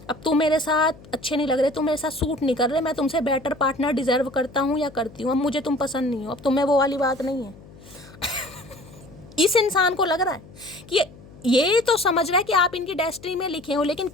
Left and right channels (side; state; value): left; noise; hum, 21 dB below the sound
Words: अब तुम मेरे साथ अच्छे नहीं लग रहे, तुम मेरे साथ सूट नहीं कर रहे, मैं तुमसे बेटर पार्टनर डिजर्व करता हूँ या करती हूँ, अब मुझे तुम पसंद नहीं हो, अब तुम्हें वो वाली बात नहीं है। इस इंसान को लग रहा है कि ये तो समझ रहा है कि आप इनकी डेस्टिनी में लिखे हो, लेकिन